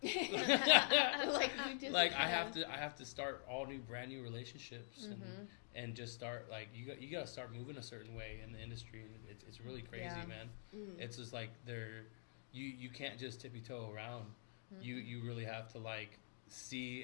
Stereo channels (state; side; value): silent; right; digital silence